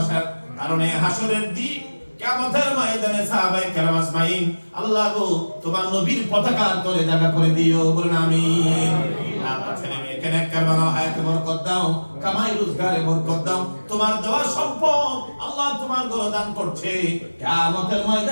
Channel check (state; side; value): inverted; both; correlation -1.00